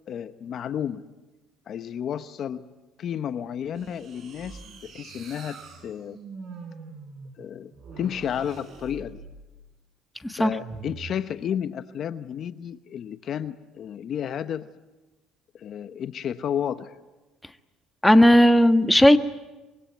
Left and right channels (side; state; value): both; normal; correlation 0.92